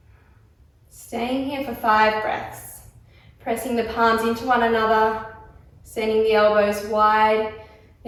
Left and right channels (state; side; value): identical; both; correlation 1.00